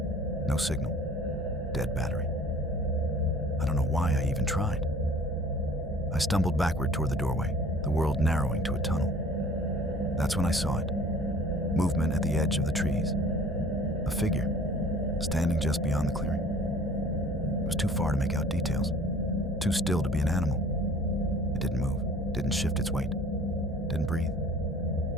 No signal. Dead battery. I don't know why I even tried. I stumbled backward toward the doorway, the world narrowing to a tunnel. That's when I saw it. Movement at the edge of the trees. A figure, standing just beyond the clearing. It was too far to make out details. Too still to be an animal. It didn't move, didn't shift its weight, didn't breathe.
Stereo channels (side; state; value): both; normal; correlation 0.48